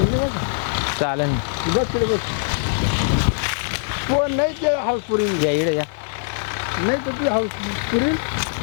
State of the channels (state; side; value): silent; right; digital silence